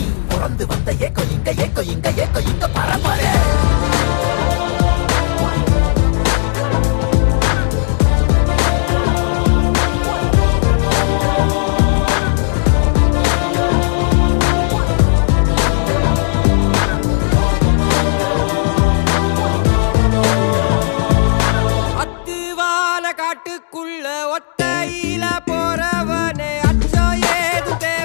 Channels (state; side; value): silent; right; digital silence